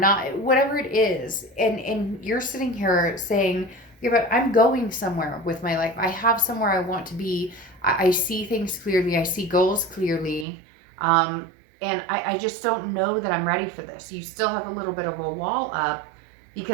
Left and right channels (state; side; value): drops out; left; at 10.5 s